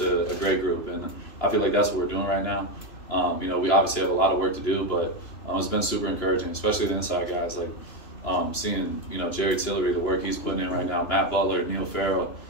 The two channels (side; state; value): right; late; 3.0 ms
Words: a great group. And I feel like that's what we're doing right now. You know, we obviously have a lot of work to do, but it's been super encouraging, especially the inside guys. Like seeing, you know, Jerry Tillery, the work he's putting in right now, Matt Butler, Neil Farrell,